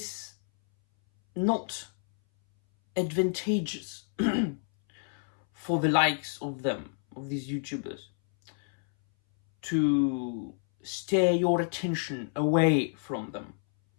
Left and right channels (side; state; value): right; silent; 58 dB below the other